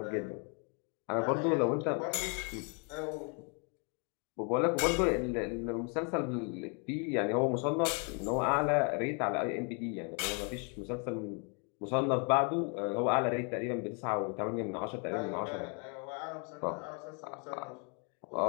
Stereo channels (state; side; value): quieter; right; 37.4 dB